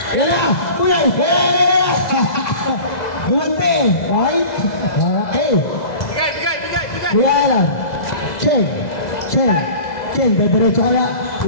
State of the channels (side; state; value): right; late; 2.0 ms